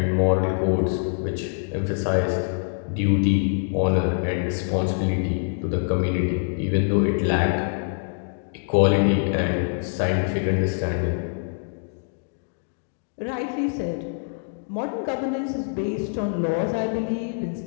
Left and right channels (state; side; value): silent; right; digital silence